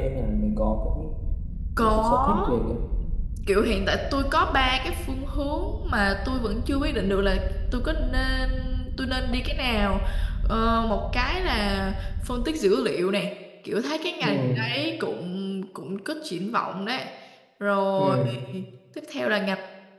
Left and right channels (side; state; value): both; identical; correlation 1.00